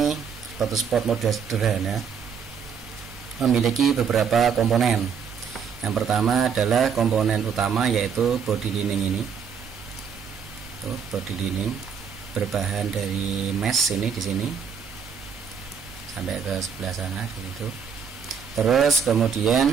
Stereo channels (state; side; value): quieter; left; 6.8 dB